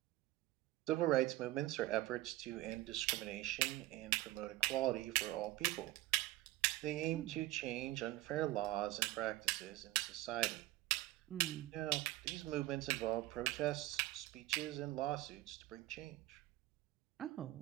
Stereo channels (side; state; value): left; quieter; 17.4 dB